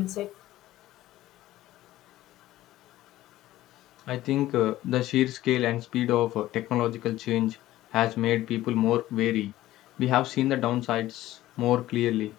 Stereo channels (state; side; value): quieter; right; 15.2 dB